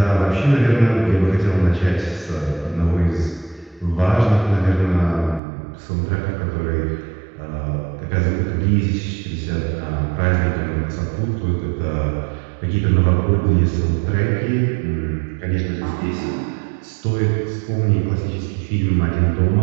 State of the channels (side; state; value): left; drops out; at 5.4 s